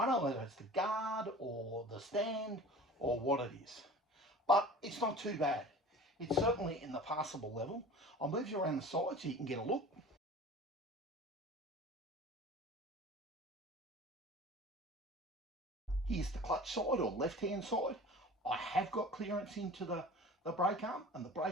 don't know whether it's the guard or the stand or what it is. But it's not too bad. It's certainly in the passable level. I'll move you around the side so you can get a look. Here's the clutch side or left-hand side. I have got clearance into the brake arm, and the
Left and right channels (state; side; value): normal; both; correlation 0.41